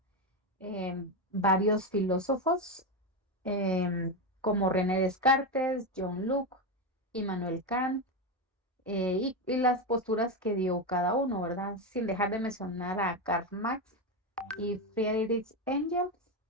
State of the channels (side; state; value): both; normal; correlation 0.12